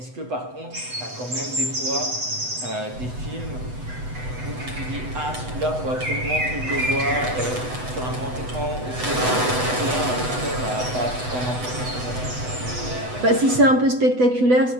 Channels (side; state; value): left; late; 8.0 ms